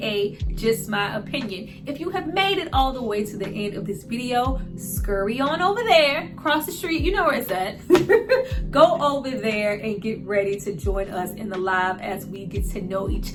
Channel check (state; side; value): identical; both; correlation 1.00